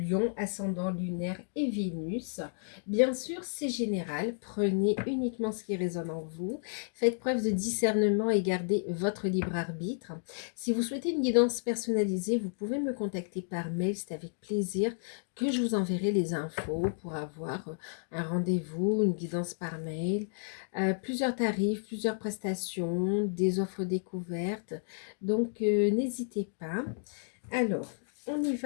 lion, ascendant lunaire et Vénus. Bien sûr, c'est général, prenez uniquement ce qui résonne en vous. Faites preuve de discernement et gardez votre libre arbitre. Si vous souhaitez une guidance personnalisée, vous pouvez me contacter par mail, c'est avec plaisir que je vous enverrai les infos pour avoir un rendez-vous, une guidance par mail. Plusieurs tarifs, plusieurs prestations, des offres découvertes. Donc, n'hésitez pas. Alors, on y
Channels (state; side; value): silent; right; digital silence